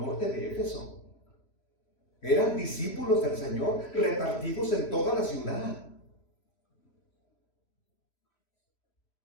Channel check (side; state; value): right; late; 3.1 ms